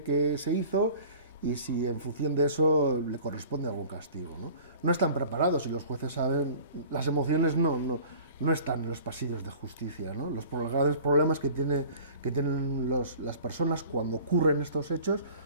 que se hizo y si en función de eso le corresponde algún castigo, ¿no? No están preparados y los jueces saben, las emociones no están en los pasillos de justicia, ¿no? Los grandes problemas que tienen las personas cuando ocurren estos hechos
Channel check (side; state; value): both; inverted; correlation -0.45